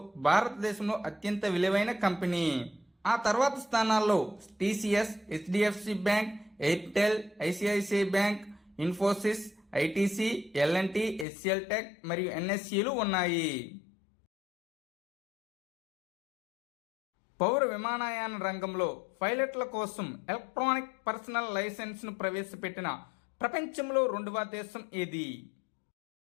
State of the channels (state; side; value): drops out; right; at 11.2 s